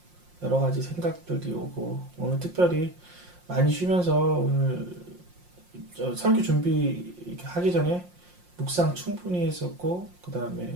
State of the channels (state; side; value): late; left; 5.6 ms